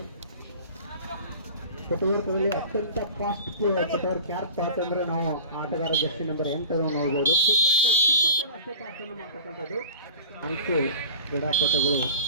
ಫುಟ್ವರ್ಕ್ಗಳಲ್ಲಿ ಅತ್ಯಂತ ಫಾಸ್ಟ್ ಫುಟ್ವರ್ಕ್ ಯಾರಪ್ಪ ಅಂತಂದ್ರೆ ನಾವು ಆಟಗಾರ ಜರ್ಸಿ ನಂಬರ್ 8 ನೋಡ್ಬೋದು. ಕೂಡ ಅಷ್ಟೇ ಫಾಸ್ಟ್ ಅನ್ನು ಮಾಡ್ತಕ್ಕಂಥದ್ದು. 4 ಕ್ರೀಡಾಪಟುಗಳು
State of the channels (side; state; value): both; inverted; correlation -0.39